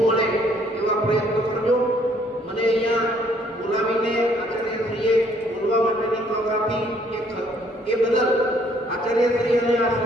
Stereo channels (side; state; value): both; normal; correlation 0.64